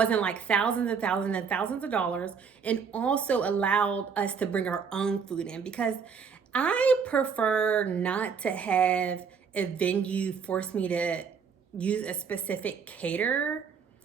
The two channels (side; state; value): left; quieter; 6.2 dB